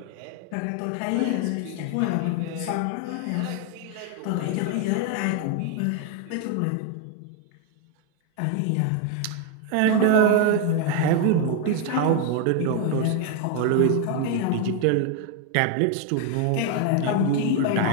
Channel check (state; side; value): different; both; correlation 0.00